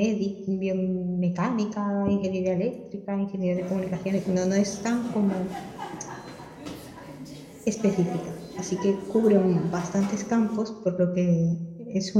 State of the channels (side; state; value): both; identical; correlation 1.00